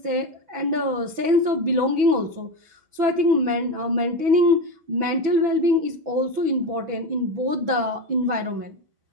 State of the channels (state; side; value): late; left; 6.0 ms